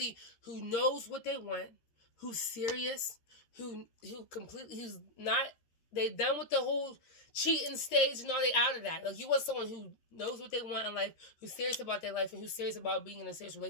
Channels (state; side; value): late; right; 13 ms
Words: who knows what they want, who's serious, who's not They done with the whole cheating stage and all. They out of that. Like, you want someone who knows what they want in life, who's serious about their life, and who's serious about being in a serious